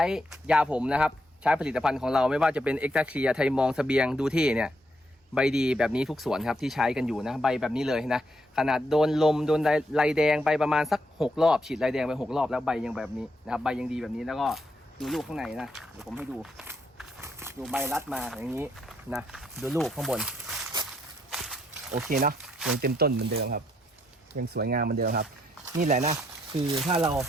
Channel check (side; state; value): both; normal; correlation 0.76